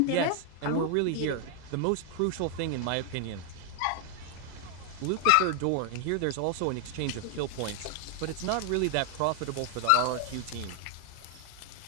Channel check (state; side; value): different; both; correlation 0.00